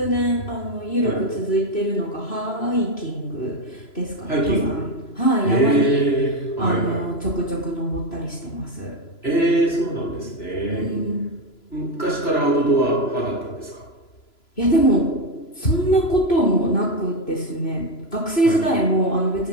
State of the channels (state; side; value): late; right; 3.0 ms